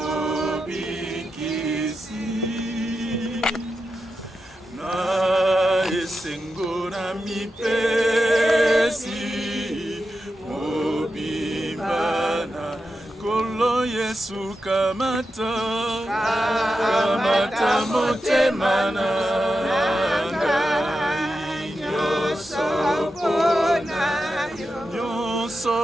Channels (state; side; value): normal; both; correlation 0.89